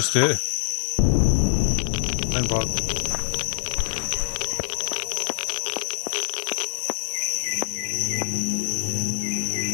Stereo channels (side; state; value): right; silent; digital silence